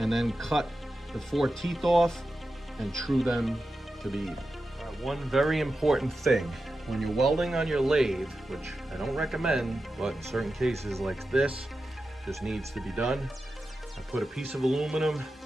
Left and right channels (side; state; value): both; normal; correlation 0.91